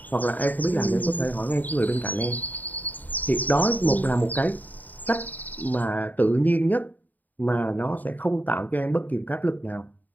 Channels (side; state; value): right; late; 0.082 ms